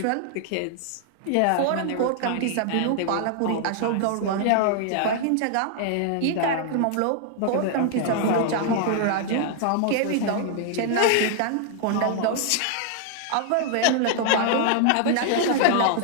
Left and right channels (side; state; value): both; different; correlation 0.00